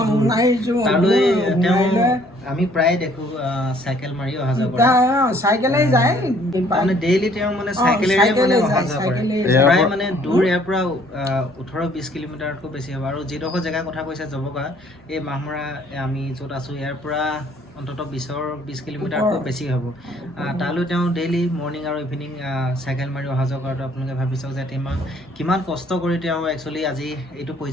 আমি প্ৰায় দেখোঁ চাইকেল মাৰি অহা যোৱা কৰে চাইকেলেই যায় মানে ডেইলি তেওঁ মানে চাইকেলেৰে মানে অহা যোৱা কৰে প্ৰায় মানে দূৰ ইয়াৰ পৰা 18-20 কিলোমিটাৰতকৈ বেছি হ'ব আৰু যিডোখৰ জেগাৰ কথা কৈছে জবকা এই মাহমৰা আমি য'ত আছোঁ ইয়াৰ পৰা অন্ততঃ 20 কিলোমিটাৰতকৈ বেছি হ'ব তালৈ তেওঁ ডেইলি মৰ্ণিং আৰু ইভিনিং চাইকেল মাৰি অহা যোৱা কৰাটো আপোনালোকে ভাবি চাওক যে কিমান কষ্ট কৰি তেওঁ একচুৱেলি আজি এইটো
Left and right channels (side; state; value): both; normal; correlation 0.60